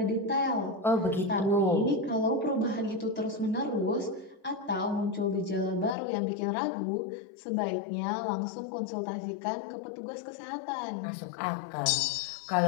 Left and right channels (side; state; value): right; drops out; at 6.0 s